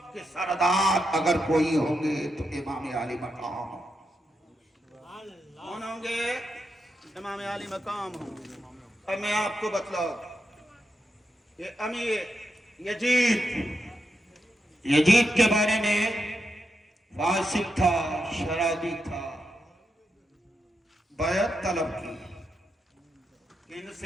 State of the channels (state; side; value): normal; both; correlation 0.85